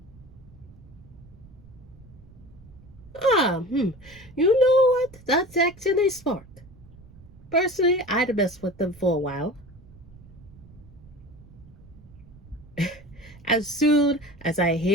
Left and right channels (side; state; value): right; noise; rumble, 22 dB below the sound